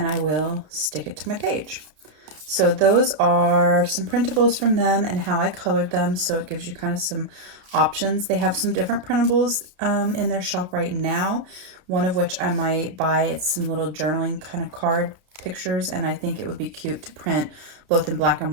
I will stick it to my page. So those are some printables from them and how I colored them. So it gives you kind of some options. They have some different printables in their shop right now, one of which I might buy. It's some little journaling kind of card pictures, and I think it would be cute to print both in black and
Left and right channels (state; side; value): late; left; 32 ms